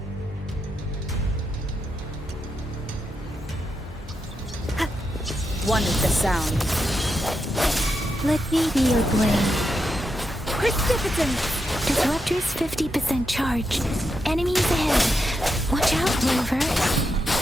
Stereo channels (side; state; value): both; normal; correlation 0.84